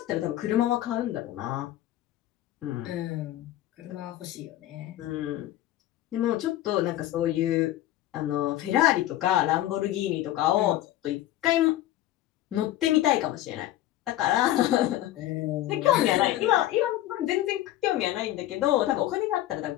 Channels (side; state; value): right; quieter; 14.1 dB